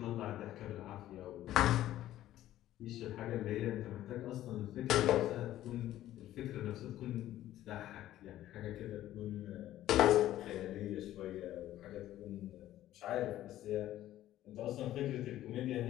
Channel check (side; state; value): right; quieter; 13.6 dB